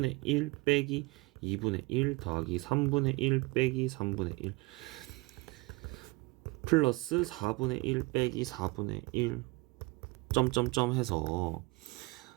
1 빼기 2분의 1 더하기 3분의 1 빼기 3분의 1 플러스 4분의 1 빼기 4분의 1 점점점 해서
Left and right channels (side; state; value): left; quieter; 23.5 dB